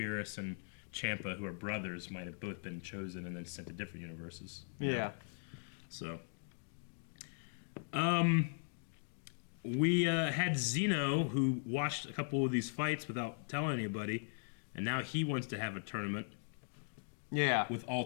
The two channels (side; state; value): right; silent; digital silence